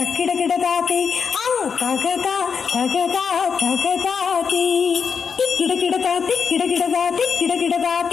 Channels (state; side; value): quieter; right; 6.2 dB